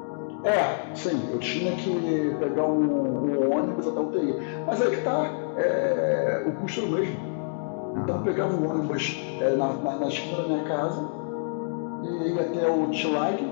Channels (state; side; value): silent; right; digital silence